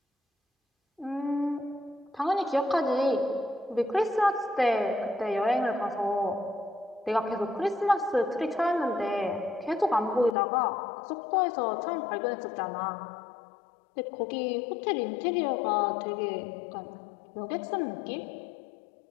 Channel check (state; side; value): drops out; right; at 10.4 s